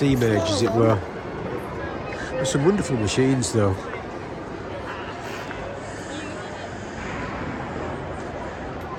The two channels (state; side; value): identical; both; correlation 1.00